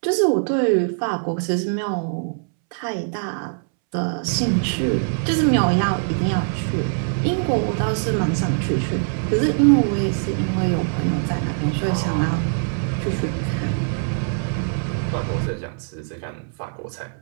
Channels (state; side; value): silent; left; 64 dB below the other